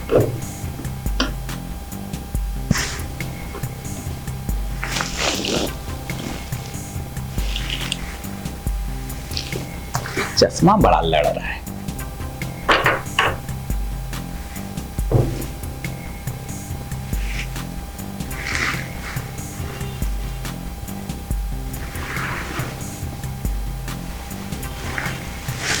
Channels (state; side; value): identical; both; correlation 1.00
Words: चश्मा बड़ा लड़ रहा है।